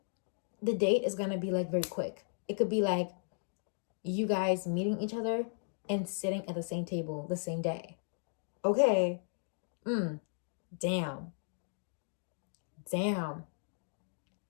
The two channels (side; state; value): right; silent; digital silence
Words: the date is gonna be like very quick. It could be like you guys meeting each other and sitting at the same table the same day. Okay. Damn.